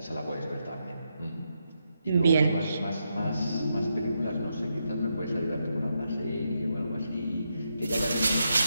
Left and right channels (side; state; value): both; inverted; correlation -0.82